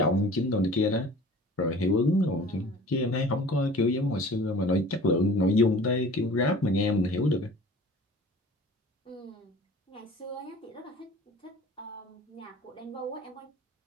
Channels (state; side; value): normal; both; correlation 0.44